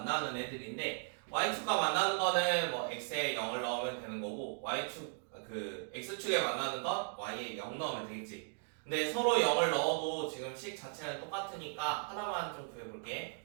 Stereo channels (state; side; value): silent; left; 53 dB below the other